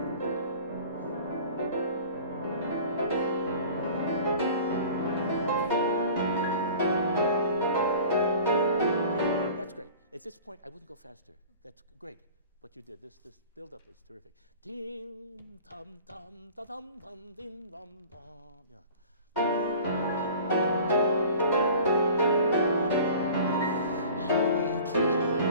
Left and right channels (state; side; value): inverted; both; correlation -0.43